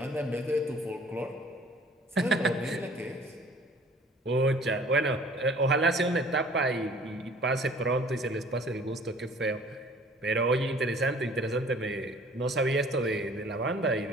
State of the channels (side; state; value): both; normal; correlation 0.52